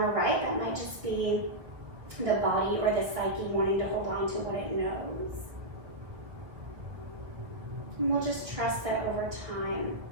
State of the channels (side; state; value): left; late; 1.3 ms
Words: or right. That might just be the body or the psyche wanting to hold on to what it knows. And we'll just trust that over time,